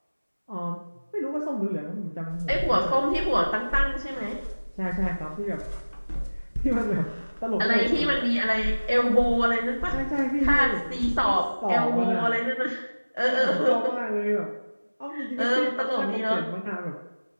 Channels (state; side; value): inverted; both; correlation -1.00